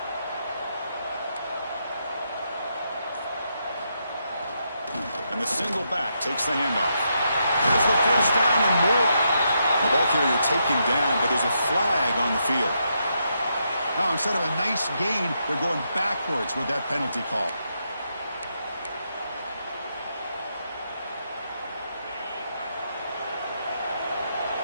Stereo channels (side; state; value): both; inverted; correlation -0.80